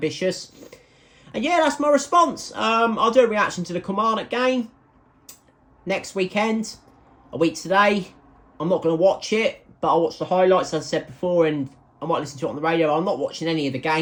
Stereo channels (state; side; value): identical; both; correlation 1.00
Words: And yeah, that's my response. I'll do a reaction to the Kilmarnock game next weekend, a week today. I'm not going to watch it, but I'll watch the highlights, as I said before, and I might listen to it on the radio. I'm not watching any of the